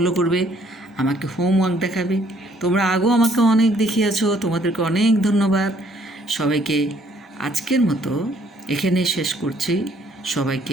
করবে, আমাকে হোমওয়ার্ক দেখাবে। তোমরা আগেও আমাকে অনেক দেখিয়েছো, তোমাদেরকে অনেক ধন্যবাদ। সবাইকে আজকের মতো এখানে শেষ করছি।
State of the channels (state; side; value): normal; both; correlation 0.64